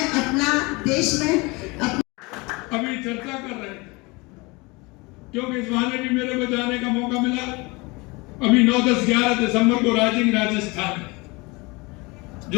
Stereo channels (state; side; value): quieter; right; 25.6 dB